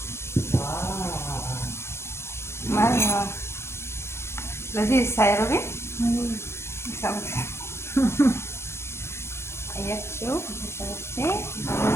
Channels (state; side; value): late; right; 0.12 ms